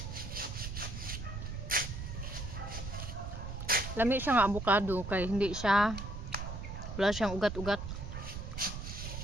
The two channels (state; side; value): noise; right; rumble, 7 dB below the sound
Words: Lami siya nga avocado kay hindi siya wala siyang ugat-ugat.